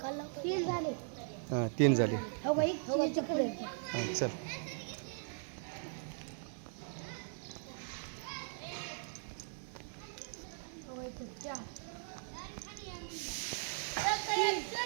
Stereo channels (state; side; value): silent; left; 52 dB below the other